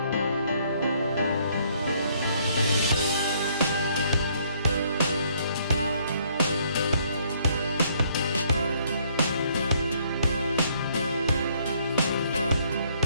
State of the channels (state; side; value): inverted; both; correlation -0.66